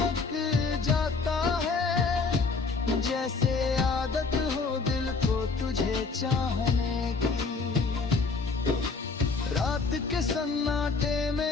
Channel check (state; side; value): quieter; right; 4.4 dB